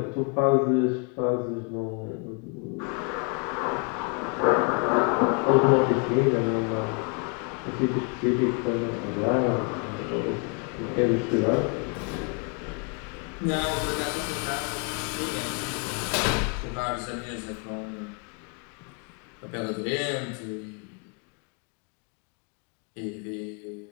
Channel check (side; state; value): right; quieter; 35.5 dB